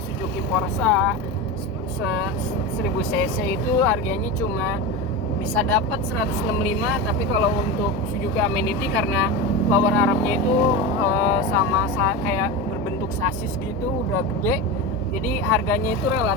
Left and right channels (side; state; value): both; normal; correlation 0.21